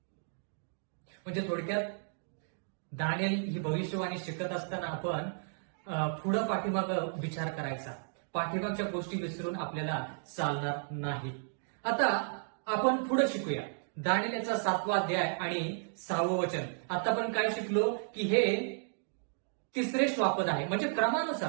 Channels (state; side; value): silent; left; digital silence